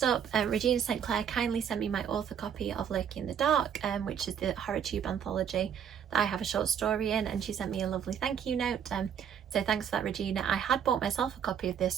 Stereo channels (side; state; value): left; quieter; 8.3 dB